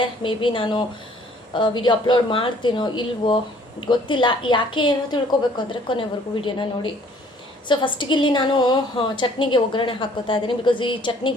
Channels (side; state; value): both; normal; correlation 0.58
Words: ಮೇ ಬಿ ನಾನು ವಿಡಿಯೋ ಅಪ್ಲೋಡ್ ಮಾಡ್ತೀನೋ ಇಲ್ವೋ ಗೊತ್ತಿಲ್ಲ. ಯಾಕೆ ಏನೋ ತಿಳ್ಕೊಬೇಕು ಅಂದರೆ ಕೊನೆವರೆಗೂ ವಿಡಿಯೋನ ನೋಡಿ. ಸೊ ಫಸ್ಟಿಗೆ ಇಲ್ಲಿ ನಾನು ಚಟ್ನಿಗೆ ಒಗ್ಗರಣೆ ಹಾಕ್ಕೋತಾ ಇದ್ದೀನಿ. ಬಿಕಾಸ್ ಈ